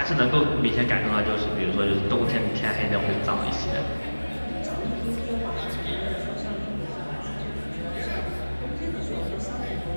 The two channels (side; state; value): both; inverted; correlation -1.00